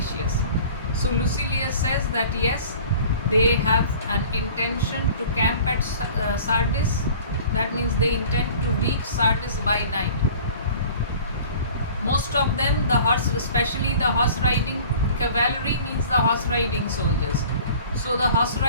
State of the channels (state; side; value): inverted; both; correlation -0.46